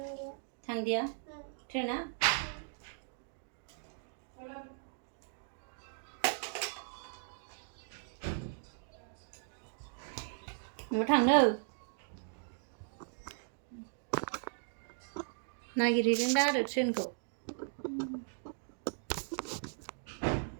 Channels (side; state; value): left; silent; digital silence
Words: थांदिया ट्रेना न'आव थांनो नागिरहैदों दा आरो ट्रेनखौ